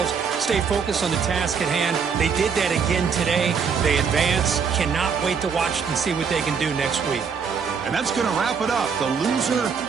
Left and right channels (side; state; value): left; quieter; 6.2 dB